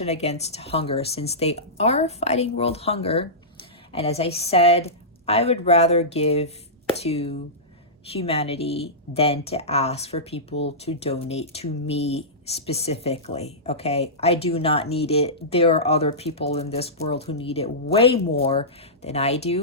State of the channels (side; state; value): both; normal; correlation -0.16